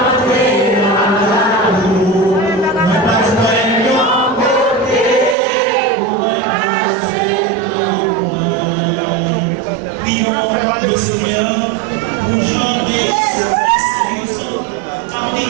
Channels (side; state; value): left; drops out; at 5.4 s